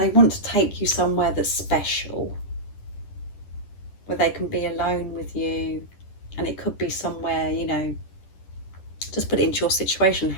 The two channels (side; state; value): right; late; 10 ms